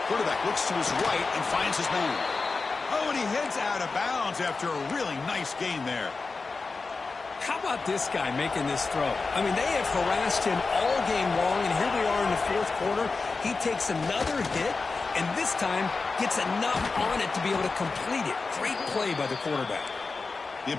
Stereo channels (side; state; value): right; quieter; 4.1 dB